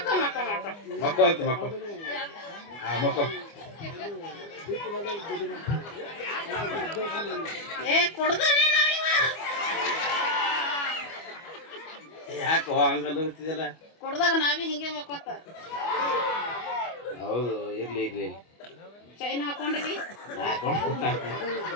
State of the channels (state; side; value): late; right; 25 ms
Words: ಮಕ್ಕ ಮಕ್ಕ ಮಕ್ಕೋ ಅಂತ ಮಕ್ಕೋ ಹಾ ಮಕ್ಕೋ ಏ ಕೊಡ್ದಾನೆ ನಾವಿವ ಯಾಕೋ ಹಂಗಲ್ಲ ಗೊತ್ತಿದಲ್ಲ ಕೊಡ್ದಾಗ ನಾವೇ ಹಿಂಗೆ ಮಕ್ಕೋತ ಹೌದು ಇರ್ಲಿ ಇರ್ಲಿ ಚೈನ್ ಹಾಕೊಂಡಿವಿ